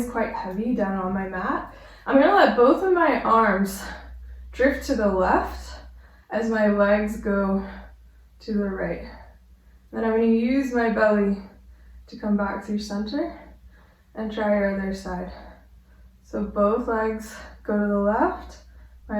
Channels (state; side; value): identical; both; correlation 1.00